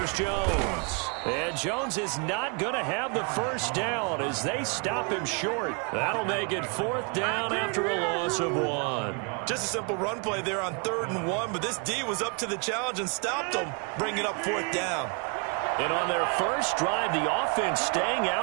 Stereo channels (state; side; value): quieter; left; 35.8 dB